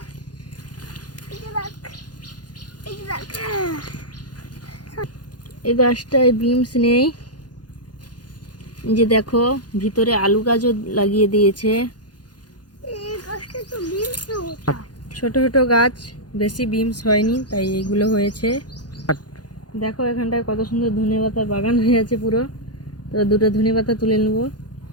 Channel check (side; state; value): right; late; 0.69 ms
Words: এই যে দেখ, এই যে দেখ। এই গাছটায় বিমস নেই, এই যে দেখো ভিতরে আলু গাছও লাগিয়ে দিয়েছে। এই গাছটা তো বিমস। ছোট ছোট গাছ, বেশি বিমস হয়নি, তাই এইগুলো হয়েছে। দেখো এখানটায় কত সুন্দর ধনেপাতার বাগান হয়ে আছে পুরো। তো দুটো ধনেপাতা তুলে নেবো।